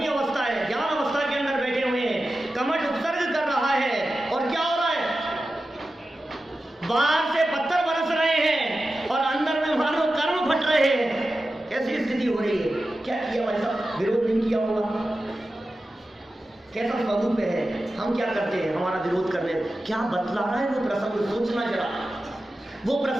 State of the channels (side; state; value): both; normal; correlation 0.93